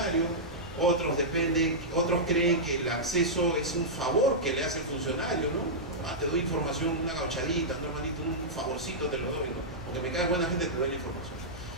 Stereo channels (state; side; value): noise; right; hum, 17 dB below the sound